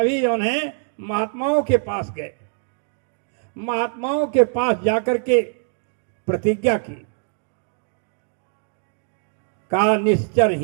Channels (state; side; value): silent; left; digital silence